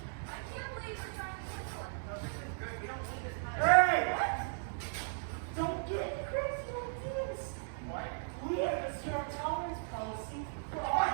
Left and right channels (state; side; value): silent; left; 53 dB below the other